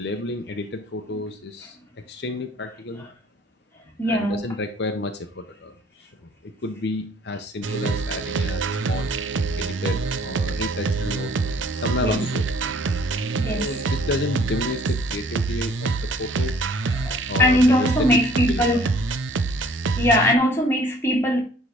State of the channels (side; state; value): both; normal; correlation 0.56